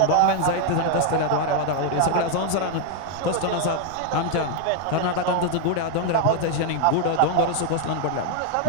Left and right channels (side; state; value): both; different; correlation 0.00